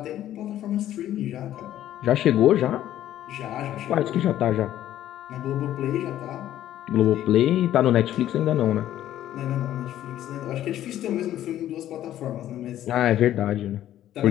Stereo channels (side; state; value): right; quieter; 12.4 dB